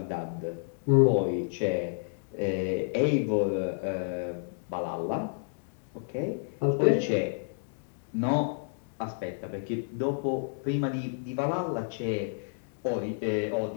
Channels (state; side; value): silent; right; digital silence